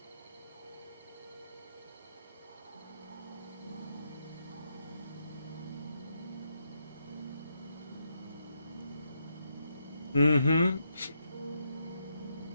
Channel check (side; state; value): both; inverted; correlation -0.80